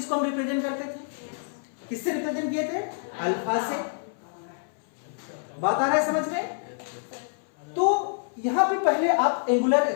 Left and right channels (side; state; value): right; silent; 60 dB below the other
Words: हम रिप्रेजेंट करते थे, किससे रिप्रेजेंट किए थे, अल्फा से। बात आ रहा है समझ में। तो यहां पे पहले आप एंगुलर